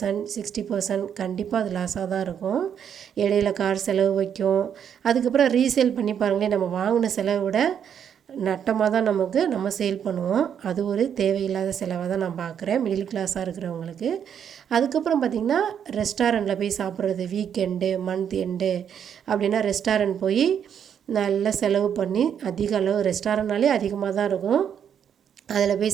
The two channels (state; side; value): quieter; left; 8.4 dB